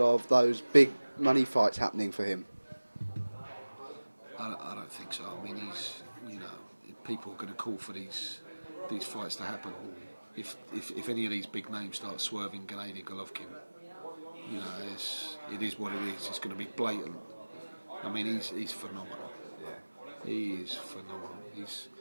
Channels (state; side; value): inverted; both; correlation -1.00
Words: those big money fights happening for him? I don't think so. He's, people are going to call for these fights to happen. If any of these big names start swerving Gennady Golovkin, it is what it is. It's going to be blatant. He's phenomenal. He is phenomenal.